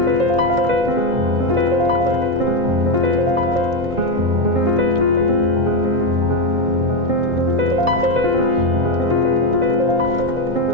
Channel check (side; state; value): left; late; 2.2 ms